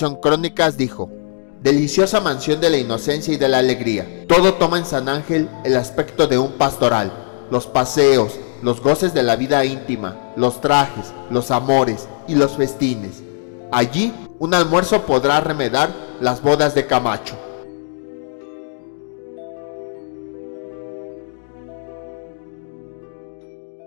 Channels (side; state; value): right; silent; digital silence